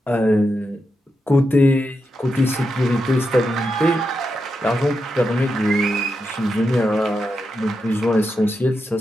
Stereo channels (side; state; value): both; normal; correlation 0.86